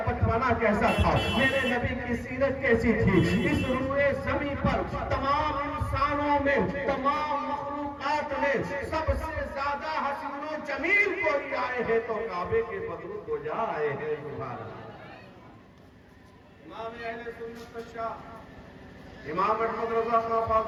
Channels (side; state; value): both; identical; correlation 1.00